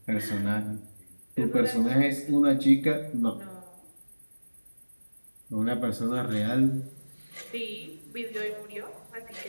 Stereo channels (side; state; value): both; inverted; correlation -1.00